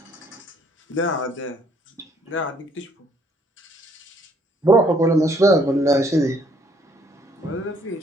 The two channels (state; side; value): normal; both; correlation 0.65